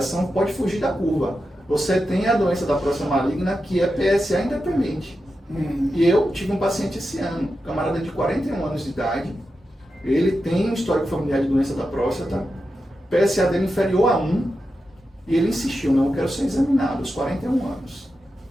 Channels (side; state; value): both; normal; correlation 0.89